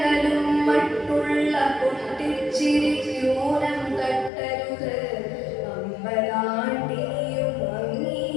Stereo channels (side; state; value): right; drops out; at 4.3 s